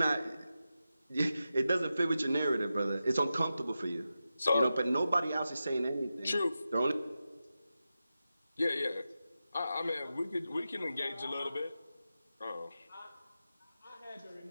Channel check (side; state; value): both; inverted; correlation -0.91